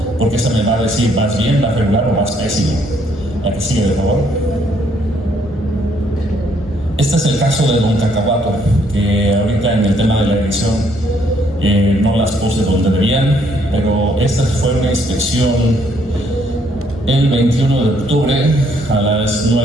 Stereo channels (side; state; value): both; normal; correlation 0.68